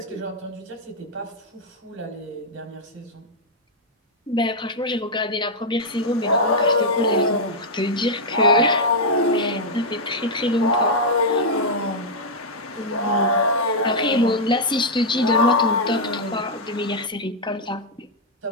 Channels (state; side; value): normal; both; correlation -0.04